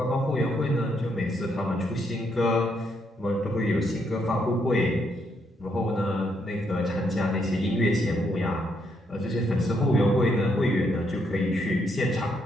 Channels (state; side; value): normal; both; correlation 0.76